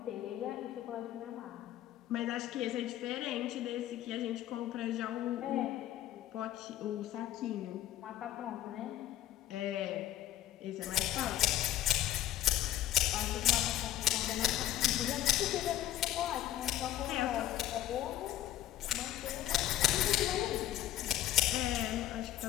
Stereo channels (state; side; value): quieter; right; 13.0 dB